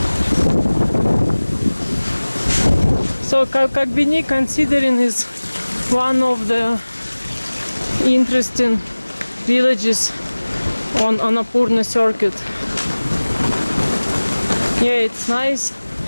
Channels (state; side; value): inverted; both; correlation -1.00